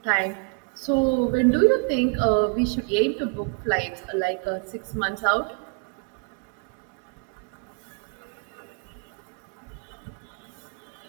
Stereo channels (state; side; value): quieter; left; 35.9 dB